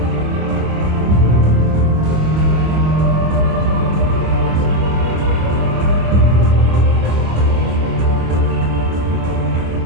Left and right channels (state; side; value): late; left; 25 ms